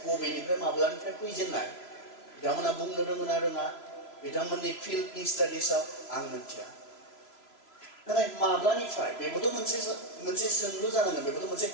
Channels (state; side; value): late; right; 3.0 ms